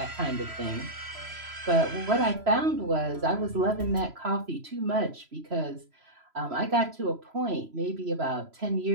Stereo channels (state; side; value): late; left; 3.0 ms